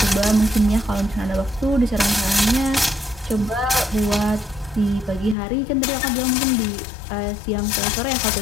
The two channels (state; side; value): drops out; right; at 5.4 s